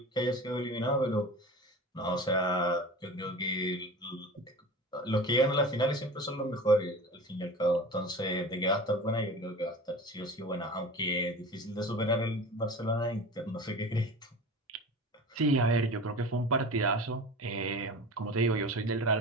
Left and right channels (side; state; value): both; normal; correlation 0.35